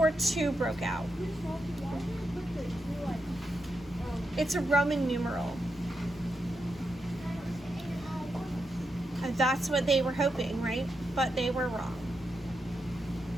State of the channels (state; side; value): normal; both; correlation 0.85